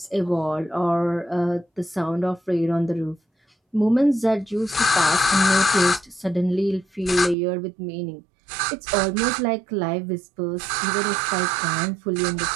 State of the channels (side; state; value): left; drops out; at 7.4 s